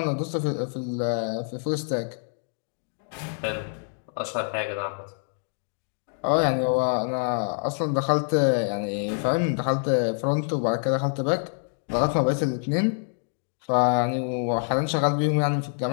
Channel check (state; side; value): silent; right; 61 dB below the other